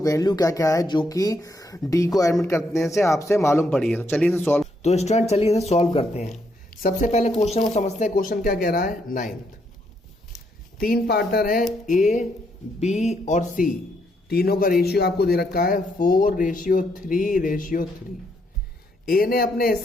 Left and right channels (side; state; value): both; normal; correlation 0.75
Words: क्या क्या है जो कि डी को एडमिट करने से आपसे मालूम पड़ी है। तो चलिए इसे सॉल्व, तो स्टूडेंट चलिए इसे सॉल्व करते हैं। सबसे पहले क्वेश्चन को समझते हैं। क्वेश्चन क्या कह रहा है, 9th तीन पार्टनर है ए बी और सी, तीनों का रेशियो आपको दे रखा है 4:3:3। ए ने अपने